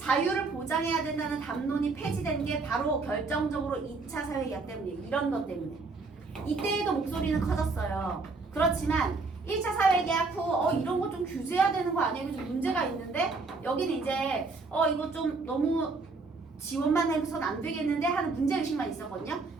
보장해야 된다는 담론이 폐지된 게 바로 결정적으로 2차 사회계약 때문이에요. 이런 것 때문에. 이때에도 목소리는 커졌어요. 그렇지만 1차 사회계약 후 이런 거 좀 규제해야 되는 거 아니에요? 좀 문제가 있는데 여기는 이제 이거 좀 너무 지원만 해서는 안 되겠는데 하는 문제의식만 있었거든요.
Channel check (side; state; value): left; quieter; 3.9 dB